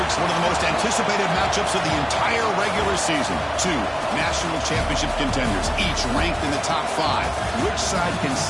one of the most anticipated matchups of the entire regular season. Two national championship contenders, each ranked in the top 5. Which side can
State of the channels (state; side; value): identical; both; correlation 1.00